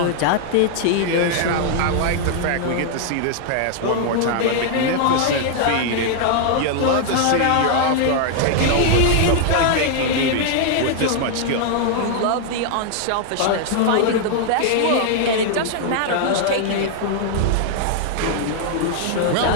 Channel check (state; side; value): different; both; correlation 0.00